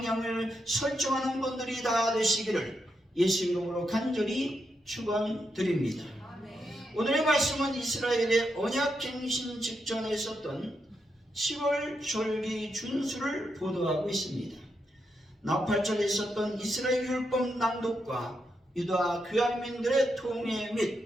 설정하는 분들이 다 되시기를 예수 이름으로 간절히 축원드립니다. 오늘의 말씀은 이스라엘의 언약갱신 직전에 있었던 7월 절기 준수를 보도하고 있습니다. 나팔절에 있었던 이스라엘 율법 낭독과 유다 귀환민들의 통해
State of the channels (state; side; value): normal; both; correlation 0.83